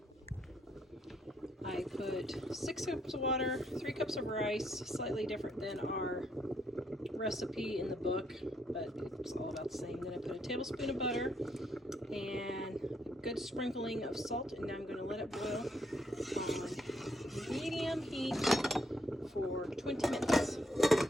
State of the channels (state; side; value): normal; both; correlation 0.74